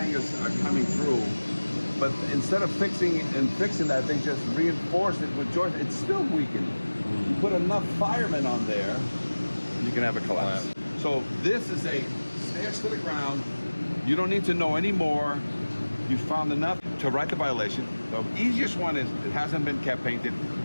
are coming through, but instead of fixing that, they just reinforced it with joist. It's still weakened. You put enough firemen on there, and you can have a collapse. So this is a stairs to the ground. You don't need to know any more. You found enough to write the violation. The easiest one is it hasn't been kept painted,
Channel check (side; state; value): both; inverted; correlation -1.00